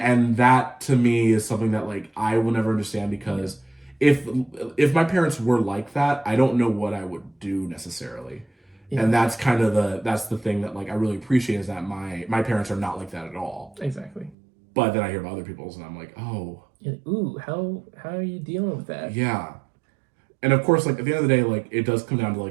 that to me is something that like I will never understand, because if my parents were like that, I don't know what I would do necessarily. Yeah. And that's kind of the thing that like I really appreciate, is that my parents are not like that at all. Exactly. But then I hear about other people's and I'm like, oh. Ooh, how are you dealing with that? Yeah. And of course, like at the end of the day, like it does come down to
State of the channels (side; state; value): left; drops out; at 14.4 s